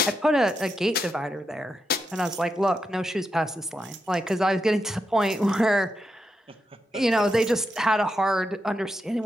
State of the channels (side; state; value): both; normal; correlation 0.85